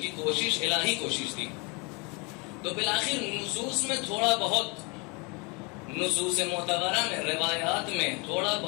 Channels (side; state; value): right; quieter; 30.1 dB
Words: کوشش الہی کوشش تھی۔ تو بالآخر نصوص میں تھوڑا بہت، نصوص معتبرہ میں، روایات میں تھوڑا